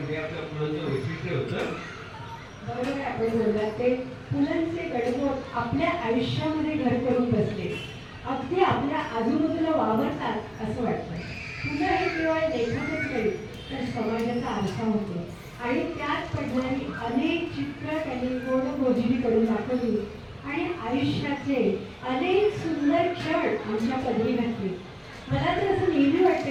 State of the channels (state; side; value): identical; both; correlation 1.00